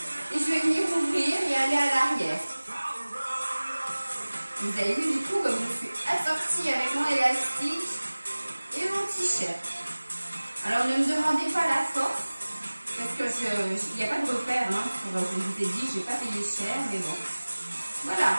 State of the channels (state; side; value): inverted; both; correlation -1.00